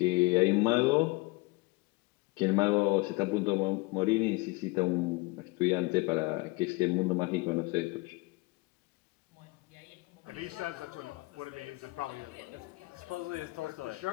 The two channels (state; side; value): quieter; right; 24.1 dB